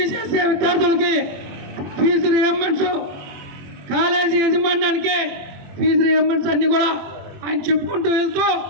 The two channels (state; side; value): late; left; 21 ms